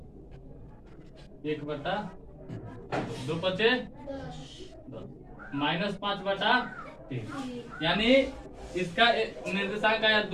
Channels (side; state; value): both; identical; correlation 1.00